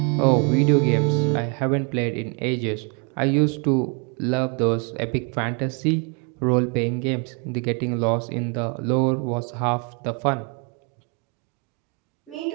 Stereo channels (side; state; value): left; quieter; 34.2 dB